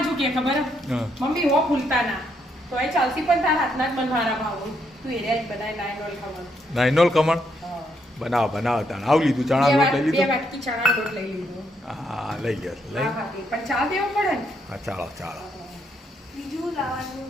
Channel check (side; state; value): both; normal; correlation 0.75